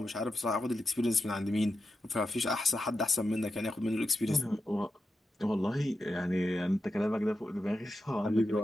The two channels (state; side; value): normal; both; correlation 0.89